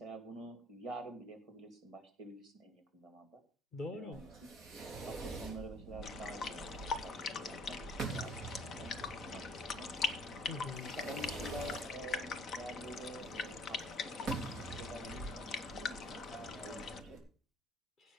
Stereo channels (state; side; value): normal; both; correlation 0.57